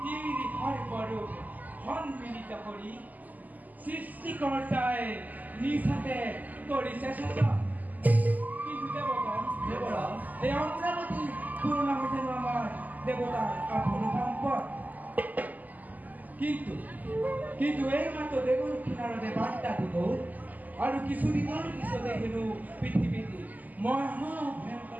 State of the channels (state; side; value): late; left; 0.081 ms